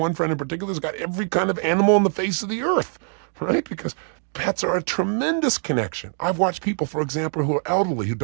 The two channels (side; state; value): left; silent; 56 dB below the other